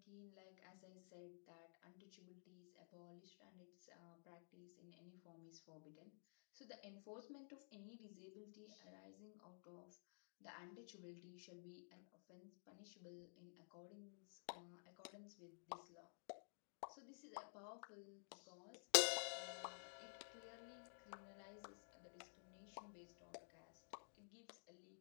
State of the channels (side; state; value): right; silent; digital silence